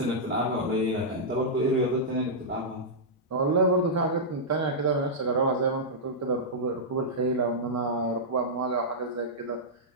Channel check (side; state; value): both; normal; correlation -0.10